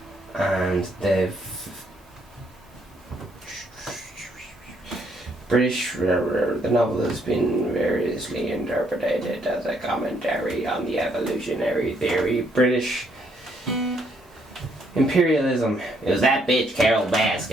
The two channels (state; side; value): normal; both; correlation 0.71